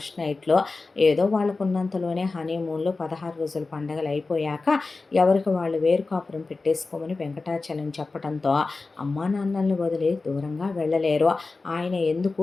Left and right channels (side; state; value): right; quieter; 3.8 dB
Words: నైట్లో ఏదో వాళ్ళకున్నంతలోనే హనీమూన్లో 16 రోజుల పండగలు అయిపోయాక ఎవరికి వాళ్ళు వేరు కాపురం పెట్టేసుకోమని వెంకటాచలం చెప్పడంతో అమ్మా నాన్నల్ని వదిలి దూరంగా వెళ్ళలేరు, ఆయన ఎందుకు